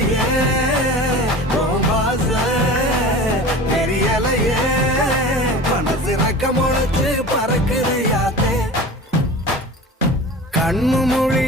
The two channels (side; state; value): both; normal; correlation 0.36